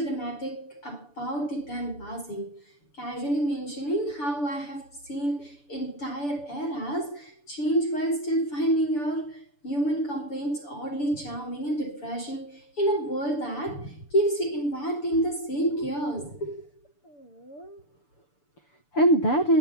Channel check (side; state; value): right; late; 6.9 ms